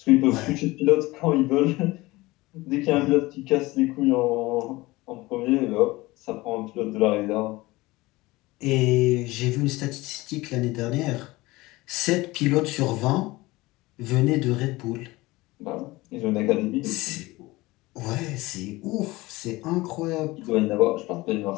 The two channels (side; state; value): right; quieter; 20.6 dB